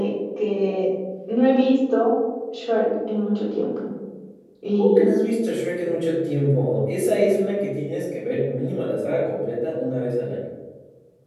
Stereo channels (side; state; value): both; identical; correlation 1.00